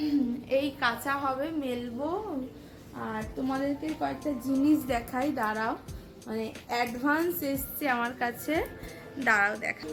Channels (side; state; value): both; identical; correlation 1.00